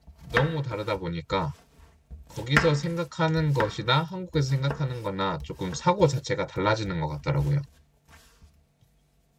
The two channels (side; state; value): both; identical; correlation 1.00